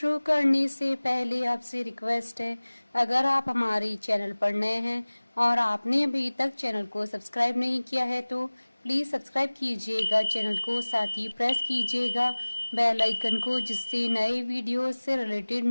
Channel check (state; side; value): inverted; both; correlation -1.00